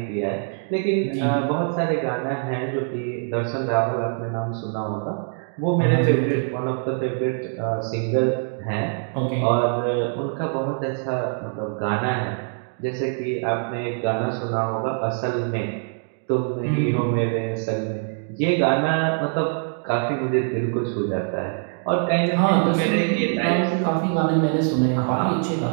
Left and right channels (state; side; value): silent; left; 58 dB below the other